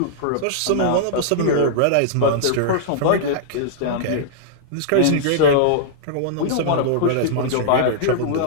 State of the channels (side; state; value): both; different; correlation -0.02